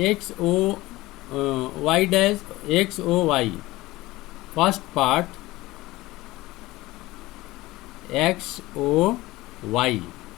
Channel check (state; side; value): quieter; right; 18.9 dB